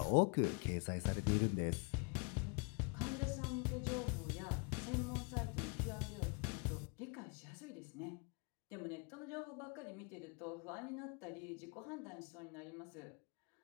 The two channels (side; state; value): right; quieter; 34.5 dB